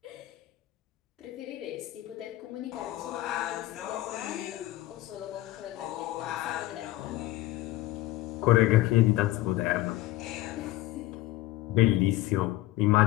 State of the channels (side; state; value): right; quieter; 16.1 dB